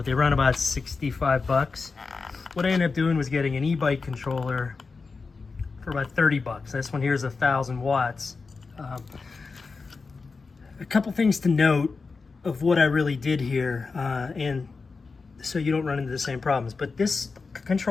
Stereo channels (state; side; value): quieter; right; 4.4 dB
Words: they run about 65 bucks. What I ended up doing was getting an e-bike controller for about 30 bucks. This one here is 1,000 watts. A couple things to note of what I really did here, and so you don't run into the same problems. But this